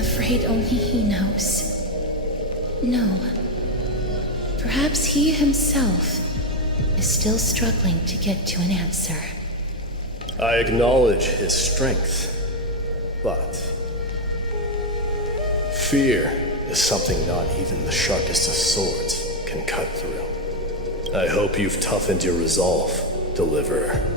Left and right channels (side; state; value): both; normal; correlation 0.06